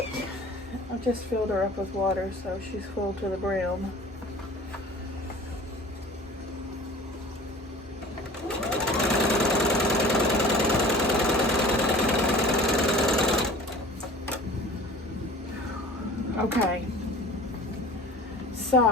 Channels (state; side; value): normal; both; correlation 0.43